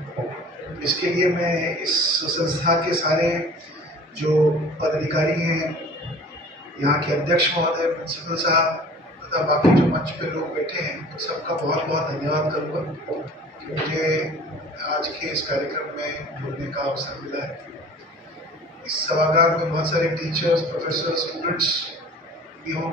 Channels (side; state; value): both; normal; correlation 0.45